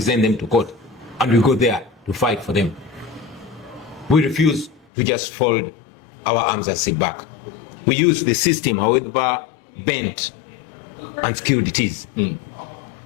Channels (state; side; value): drops out; right; at 4.9 s